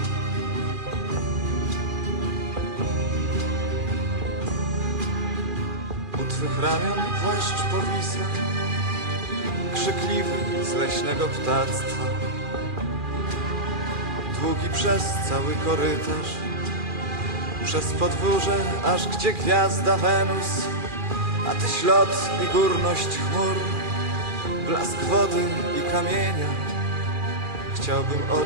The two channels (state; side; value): late; left; 2.4 ms